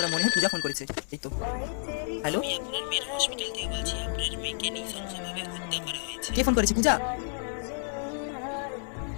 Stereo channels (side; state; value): right; silent; 58 dB below the other